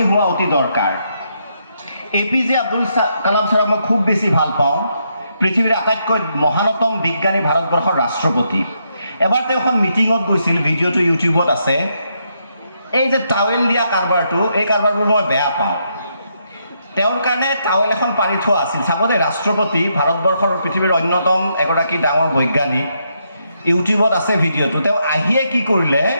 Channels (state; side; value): inverted; both; correlation -0.78